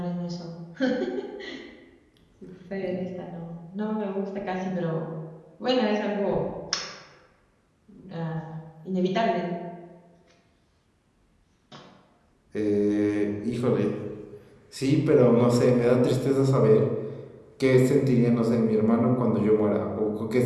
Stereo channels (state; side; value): identical; both; correlation 1.00